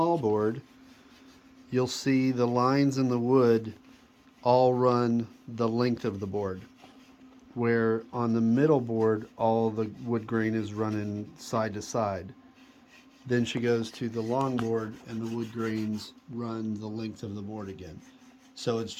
board, you'll see the lines in the wood all run the length of the board, where on the middle board all the wood grain is running side to side. Then she goes to the long board and the wood grains run the length of the board again. So it's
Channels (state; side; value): identical; both; correlation 1.00